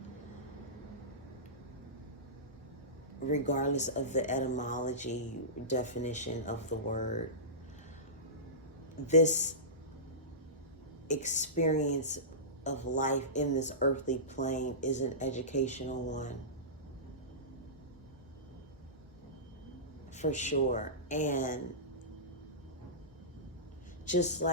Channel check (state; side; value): normal; both; correlation -0.20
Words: regardless of the etymology definition of the word. This experience of life in this earthly plane is an educational one, for sure. And just